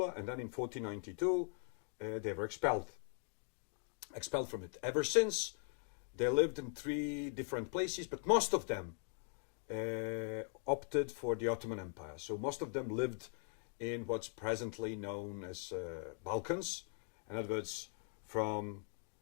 and then in 1492 they were expelled from it. Ever since, they lived in 3 different places, but most of them opted for the Ottoman Empire. So most of them lived in what's presently known as Balkans, in other words, from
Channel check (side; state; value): right; silent; 51 dB below the other